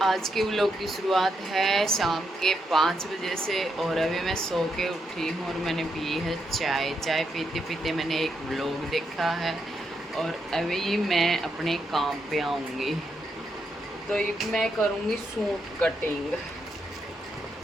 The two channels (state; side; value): normal; both; correlation 0.81